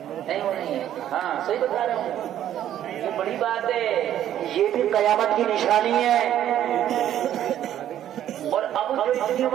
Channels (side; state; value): left; quieter; 11.3 dB